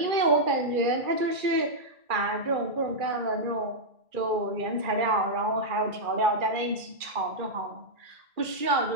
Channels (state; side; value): late; left; 2.3 ms